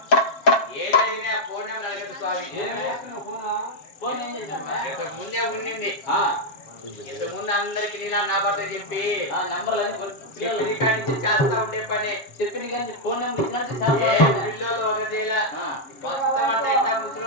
ఏదైనా ఫోన్ నెంబర్ అడగదు స్వామి ఫోన్ ఏం చేసినా ఇంతకు ముందే ఉండింది ఆ ఇంతకు ముందు అందరికి నీలా నా భర్త చెప్పి ఆ నెంబర్లు చెప్పిన కాడి నుంచి చేస్తా ఉండే పని చెప్పిన కానీ ఫోన్ నెంబర్ ఇచ్చినట్టు ఏ చాలా పిల్లలు ఒక చేయాల ఆ. మొత్తం అంతా ఇట్లా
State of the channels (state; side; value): late; right; 7.4 ms